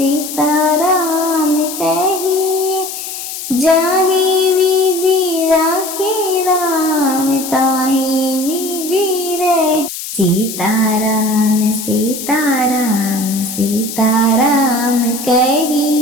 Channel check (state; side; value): noise; left; hiss, 8 dB below the sound